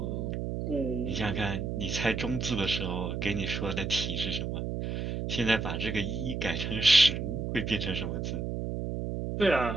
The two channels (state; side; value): noise; right; hum, 3 dB below the sound